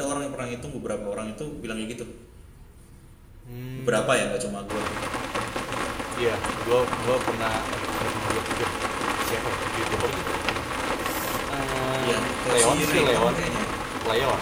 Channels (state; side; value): identical; both; correlation 1.00